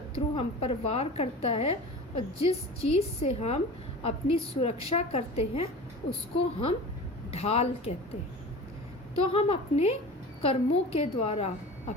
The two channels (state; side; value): normal; both; correlation 0.35